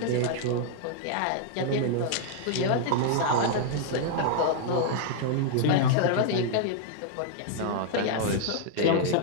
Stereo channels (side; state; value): both; different; correlation -0.01